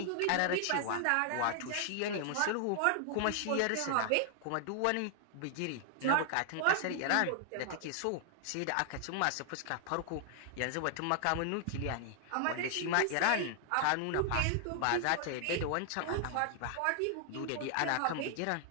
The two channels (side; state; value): both; different; correlation 0.00